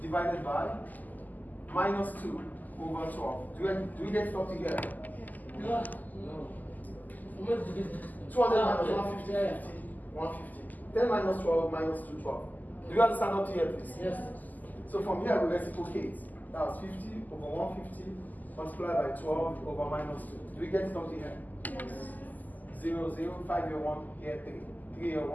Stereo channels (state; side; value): late; right; 0.082 ms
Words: divided by minus 2 over 12. Do we get it up together? No. 200 minus 150, 50, 150. 10 minus 12 minus 2, 12. Do you understand up to here, please? Yes. So from here we reciprocate. That was 50 over 150 multiplied by 12 over minus 2. Do we get it up to here? Yes. 0, 0, 5 here 1, here 3. 3 here